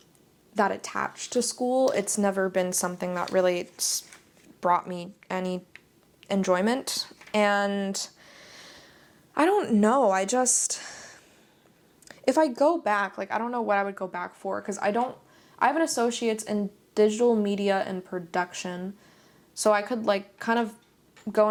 that attached to school. It's never been something that really brought me any enjoyment, and I don't know, if I go back, like I don't know what I would go back for, because I have an associate's in digital media and production, so I could like kind of go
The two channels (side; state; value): both; identical; correlation 1.00